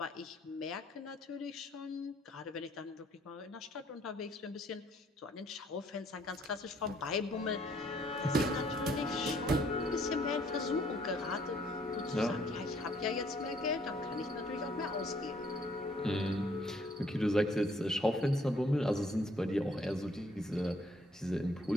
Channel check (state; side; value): normal; both; correlation 0.64